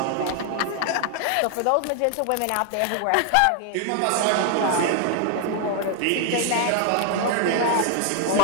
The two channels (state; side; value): different; both; correlation 0.00